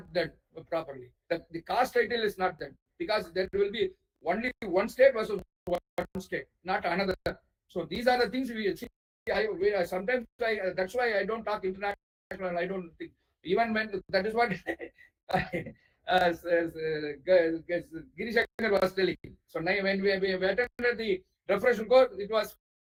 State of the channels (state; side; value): identical; both; correlation 1.00